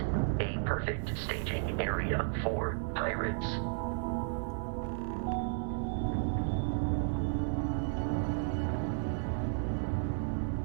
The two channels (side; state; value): left; silent; 55 dB below the other